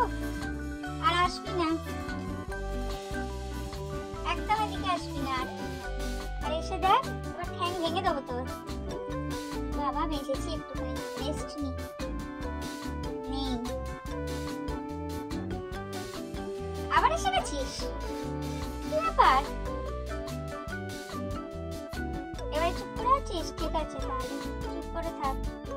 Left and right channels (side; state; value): both; identical; correlation 1.00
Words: আর আসবি না, একদম এদিকে আসবি না আর। আর এসে দেখ, এবার ঠ্যাং ভেঙে দেবো তোর। বাবা বেঁচেছি, একটুখানি রেস্ট নি। নেই, আবার এসে গেছিস, কি ব্যাপার? এবার চুপ করে আছিস? ঠিক আছে তাহলে চুপ করে থাক,